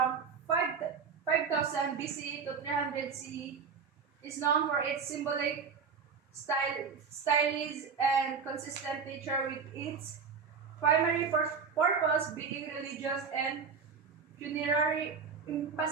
5000 BC to 300 CE is known for its symbolic stylism and consistent nature, with its primary purpose being religious and funerary,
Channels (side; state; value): left; quieter; 5.8 dB